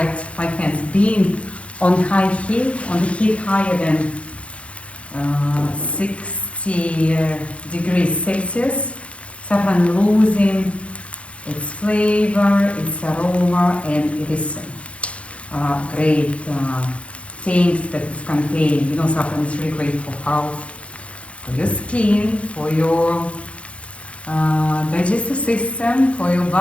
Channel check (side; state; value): right; late; 0.062 ms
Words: my hands. Being on high heat, on the heat higher than 60 degrees Celsius, saffron losing its flavor, its aroma, and it is great things that it contains. You know, saffron is really great for health, for your skin, for your digestive system, for your